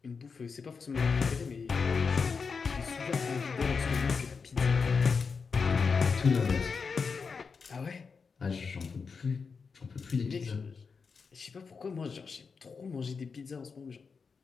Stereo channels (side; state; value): right; quieter; 5.3 dB